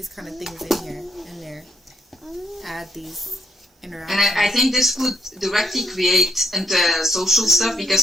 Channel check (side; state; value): both; normal; correlation 0.73